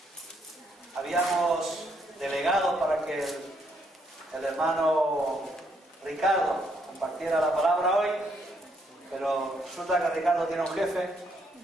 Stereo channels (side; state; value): both; normal; correlation 0.73